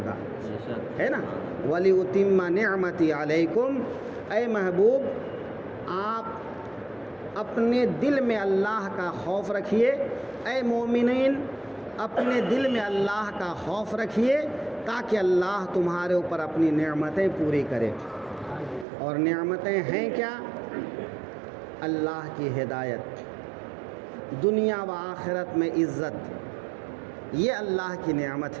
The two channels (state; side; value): drops out; left; at 18.9 s